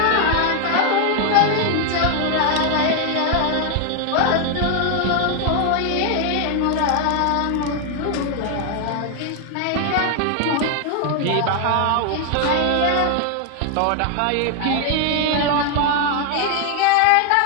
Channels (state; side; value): different; both; correlation 0.01